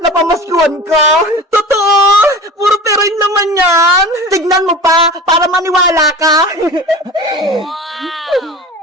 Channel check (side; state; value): both; normal; correlation 0.36